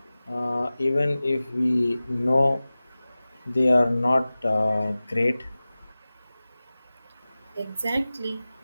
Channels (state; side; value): inverted; both; correlation -0.97